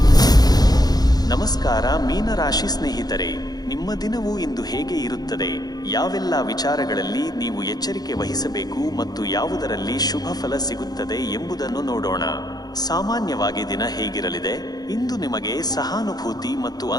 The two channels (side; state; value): right; late; 0.19 ms